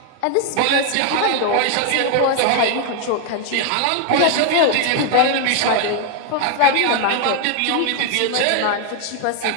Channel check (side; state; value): both; different; correlation 0.00